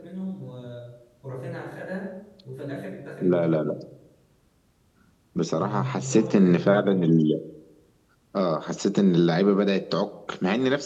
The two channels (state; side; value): identical; both; correlation 1.00